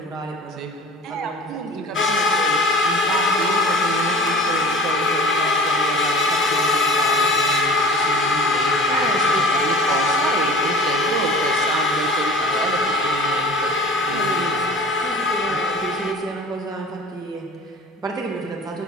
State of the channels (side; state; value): both; normal; correlation 0.40